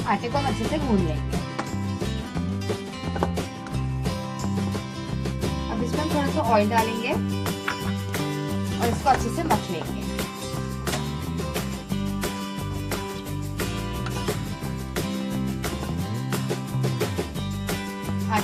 आटे को हम अच्छे से गूंद लेंगे। अब इसमें हम थोड़ा सा ऑयल डालेंगे और इसको अच्छे से मथ लेंगे।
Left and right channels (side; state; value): both; identical; correlation 1.00